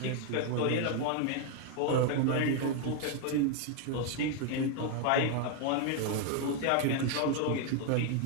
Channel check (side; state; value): both; different; correlation 0.00